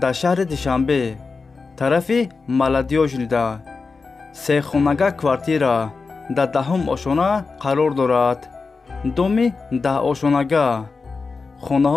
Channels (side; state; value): right; quieter; 4.4 dB